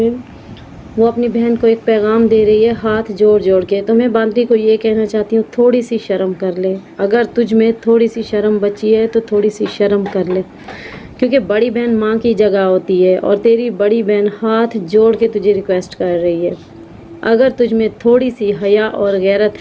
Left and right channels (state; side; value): identical; both; correlation 1.00